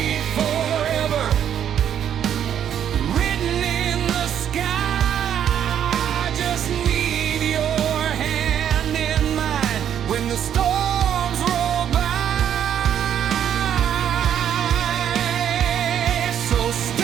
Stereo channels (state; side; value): quieter; left; 9.5 dB